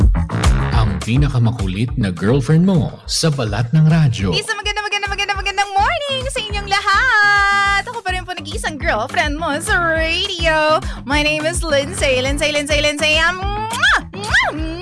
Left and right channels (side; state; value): both; identical; correlation 1.00